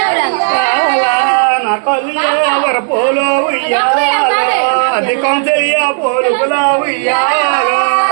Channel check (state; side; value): silent; left; 60 dB below the other